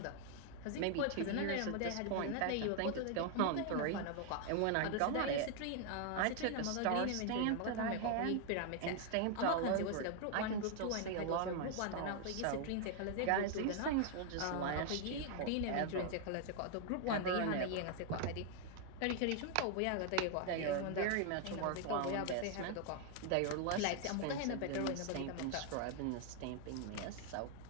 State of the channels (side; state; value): both; different; correlation 0.00